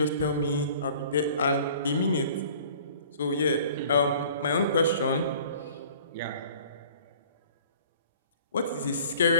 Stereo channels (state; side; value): inverted; both; correlation -0.50